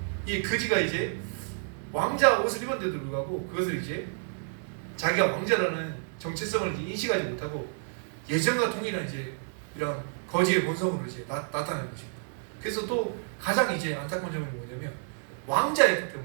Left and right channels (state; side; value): silent; left; digital silence